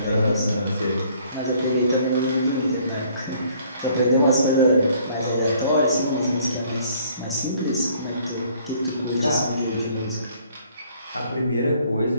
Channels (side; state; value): both; inverted; correlation -0.61